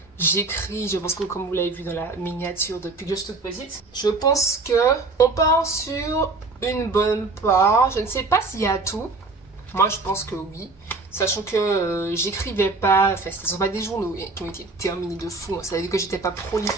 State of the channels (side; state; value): left; quieter; 3.5 dB